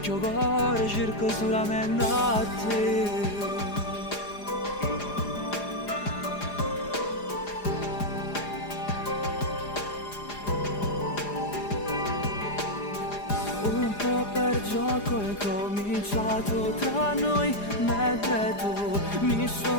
il cuore cerca solamente a te. Un po' per gioco è cominciato tra noi, mentre tu mi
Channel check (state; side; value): late; right; 4.9 ms